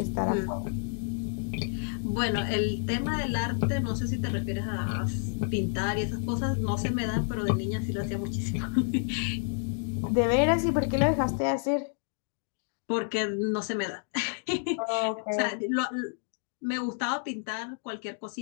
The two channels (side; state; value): right; silent; digital silence